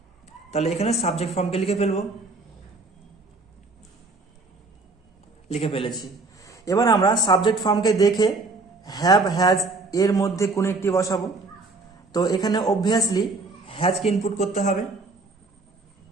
তাহলে এখানে সাবজেক্ট ফর্মকে লিখে ফেলবো, লিখে ফেলেছি। এবার আমরা সাবজেক্ট ফর্মকে দেখে হ্যাভ হ্যাজ এর মধ্যে কোনো একটি বসাবো। তো এখানে অবভিয়াসলি হ্যাজকে ইনপুট করতে হবে,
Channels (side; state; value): left; quieter; 3.5 dB